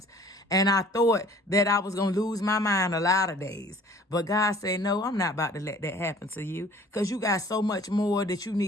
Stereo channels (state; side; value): normal; both; correlation 0.51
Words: and I thought that I was going to lose my mind a lot of days. But God said, no, I'm not about to let that happen to you, because you got so much more that you